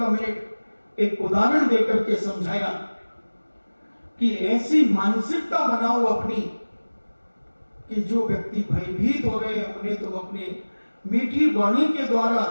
मिनट एक उदाहरण देकर के समझाया कि ऐसी मानसिकता बनाओ अपनी कि जो व्यक्ति भयभीत हो रहे हैं उन्हें तुम अपने मीठी वाणी के द्वारा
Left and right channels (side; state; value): both; inverted; correlation -1.00